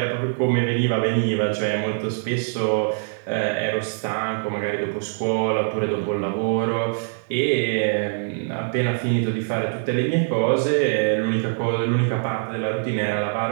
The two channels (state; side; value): silent; left; 63 dB below the other